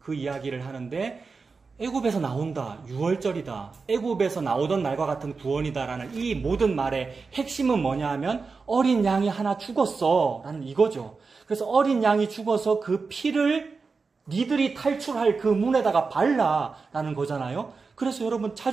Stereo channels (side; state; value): left; quieter; 4.6 dB